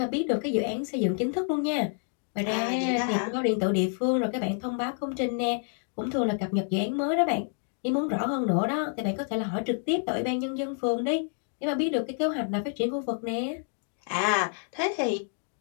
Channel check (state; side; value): silent; right; 55 dB below the other